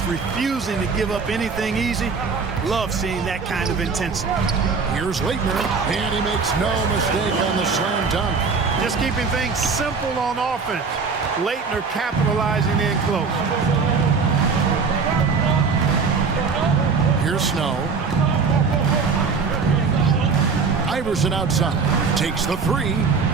refusing to give up anything easy, love seeing that kind of intensity. Here's Leitner, and he makes no mistake on the slam dunk. Just keeping things simple on offense. Leitner capitalizing in close. Here's Snow. Iverson outside. Takes the three.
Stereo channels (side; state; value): left; quieter; 5.0 dB